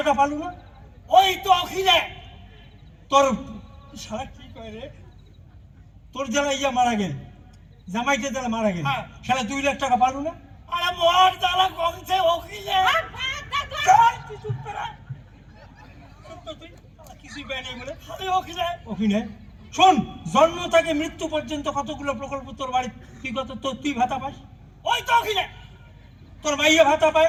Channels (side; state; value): both; identical; correlation 1.00